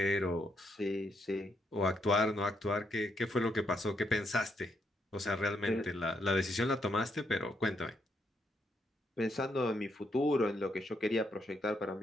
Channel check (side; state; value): both; normal; correlation 0.77